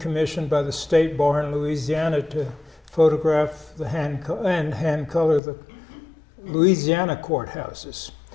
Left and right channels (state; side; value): drops out; right; at 5.4 s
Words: by the State Bar in Louisiana to photograph hand color the Louisiana courthouses